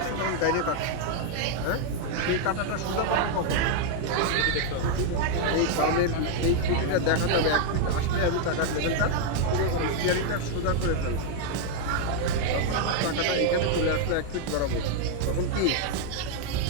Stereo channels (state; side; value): different; both; correlation 0.00